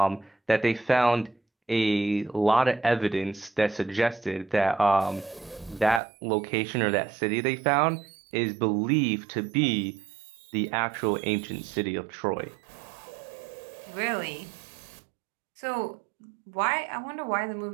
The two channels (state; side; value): drops out; left; at 6.0 s